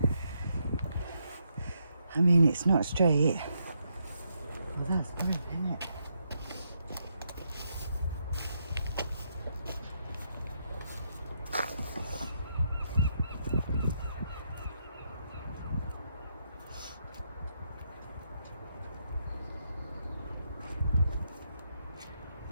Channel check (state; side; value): inverted; both; correlation -0.79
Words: I mean, it's not straight. Well, that's brilliant, isn't it?